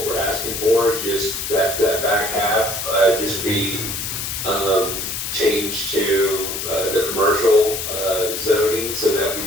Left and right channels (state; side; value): noise; left; hiss, 4 dB below the sound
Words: we're asking for, is just that back half, just be, changed to, the commercial, zoning, so that we